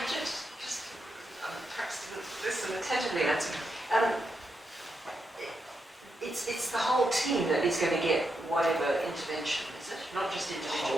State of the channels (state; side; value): normal; both; correlation 0.83